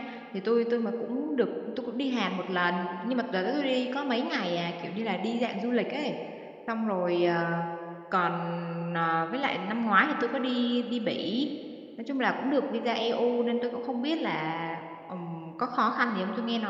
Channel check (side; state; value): both; identical; correlation 1.00